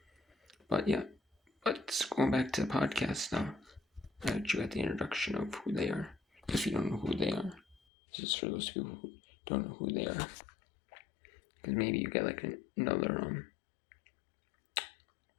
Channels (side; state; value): right; drops out; at 7.8 s